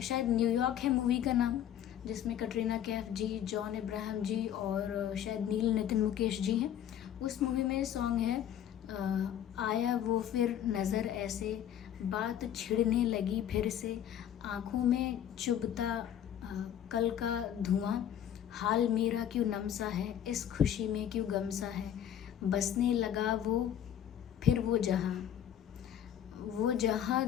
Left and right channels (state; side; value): quieter; right; 10.1 dB